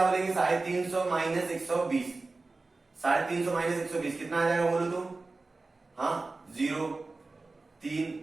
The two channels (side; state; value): left; quieter; 3.5 dB